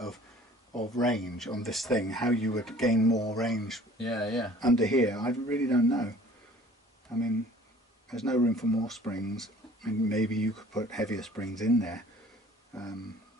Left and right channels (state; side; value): normal; both; correlation 0.51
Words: range on this thing, how you would gain more range under here. I really don't know. I mean, there's no room for more springs. I mean, maybe you could put heavier springs in there,